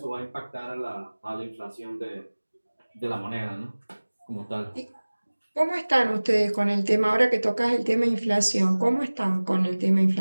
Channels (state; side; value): inverted; both; correlation -1.00